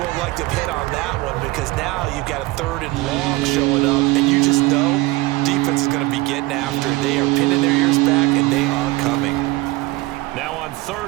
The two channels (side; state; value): left; quieter; 20.7 dB